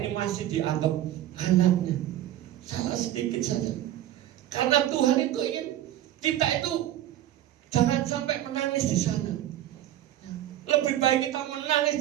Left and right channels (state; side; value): quieter; left; 12.8 dB